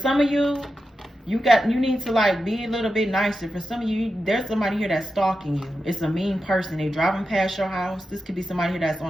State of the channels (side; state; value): both; normal; correlation 0.90